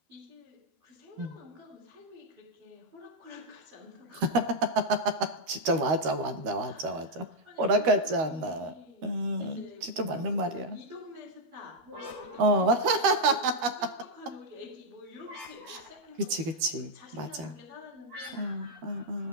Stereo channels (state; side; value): late; left; 12 ms